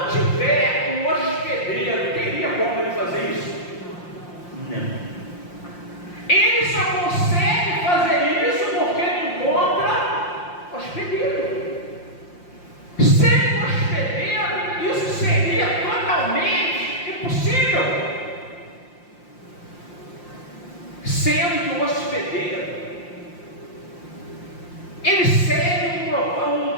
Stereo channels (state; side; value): late; right; 5.7 ms